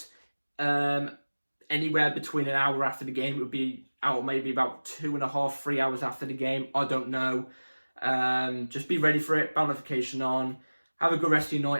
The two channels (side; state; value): both; inverted; correlation -1.00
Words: anywhere between an hour after the game. It would be out maybe about 2.5, 3 hours after the game. I don't know. Just be ready for it. Bell notification on. Have a good rest of your